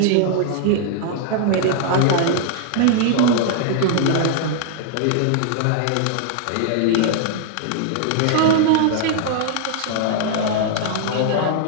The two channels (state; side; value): different; both; correlation -0.01